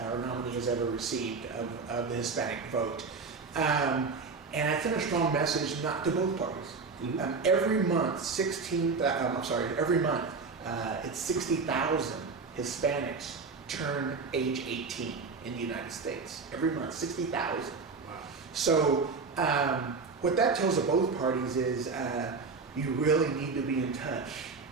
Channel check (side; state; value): left; quieter; 4.6 dB